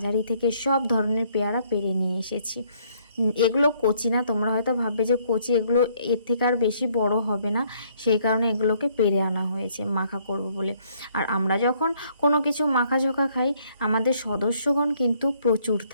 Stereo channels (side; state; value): both; inverted; correlation -0.66